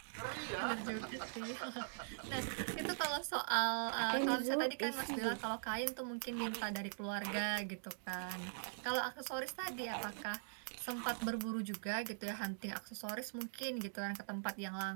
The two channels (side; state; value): left; silent; digital silence